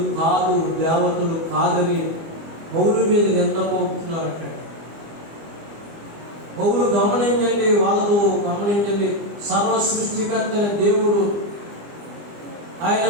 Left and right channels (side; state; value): left; late; 25 ms